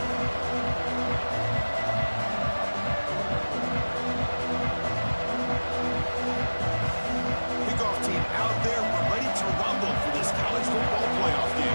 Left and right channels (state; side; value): inverted; both; correlation -1.00